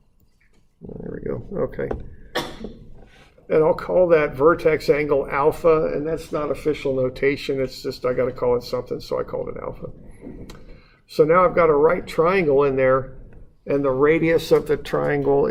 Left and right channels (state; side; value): identical; both; correlation 1.00